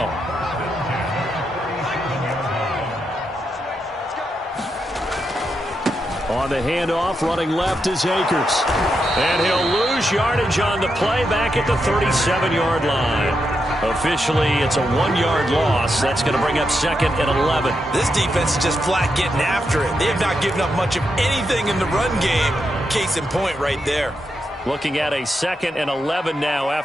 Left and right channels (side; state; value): both; normal; correlation 0.84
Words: On the handoff, running left is Akers. And he'll lose yardage on the play back at the 37-yard line. Officially, it's a 1-yard loss. That's going to bring up 2nd and 11. This defense is just flat getting after it. They have not given up much of anything in the run game. Case in point right there. Looking at a 2nd and 11 now